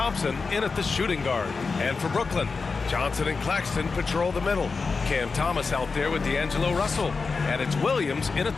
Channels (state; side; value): quieter; right; 4.5 dB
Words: in at the shooting guard. And for Brooklyn, Johnson and Claxton patrol the middle. Cam Thomas out there with D'Angelo Russell. And it's Williams in at